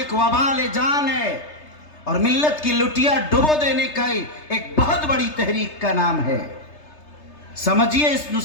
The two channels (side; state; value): right; late; 3.3 ms